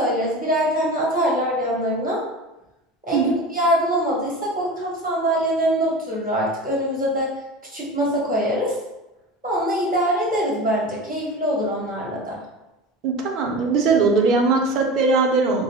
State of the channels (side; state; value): both; normal; correlation 0.32